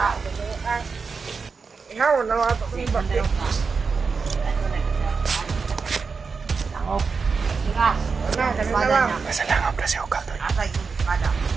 Ikaw na ato ko ni bakit. Langop. Tigas. Ano, kanina lang. Nasa langop na si Ukal doon. Asa yung espada.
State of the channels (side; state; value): left; quieter; 5.0 dB